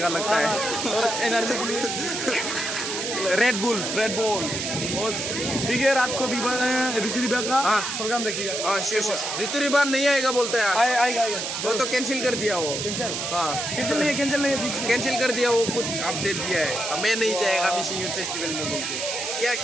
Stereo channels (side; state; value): right; noise; hiss, 3 dB below the sound